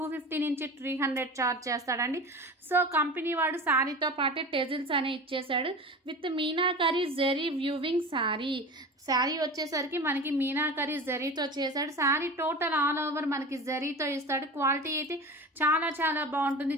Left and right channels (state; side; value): normal; both; correlation 0.32